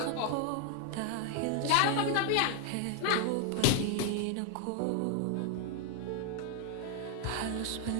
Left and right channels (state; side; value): different; both; correlation 0.00